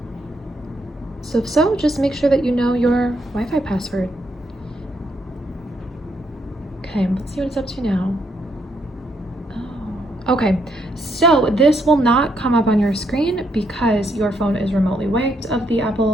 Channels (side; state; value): both; normal; correlation 0.75